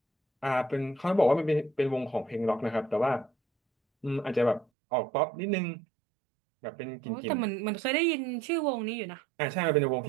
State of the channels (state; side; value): drops out; left; at 4.7 s